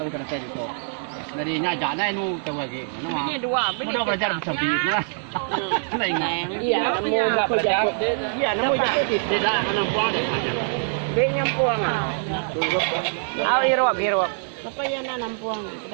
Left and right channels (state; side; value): silent; left; 63 dB below the other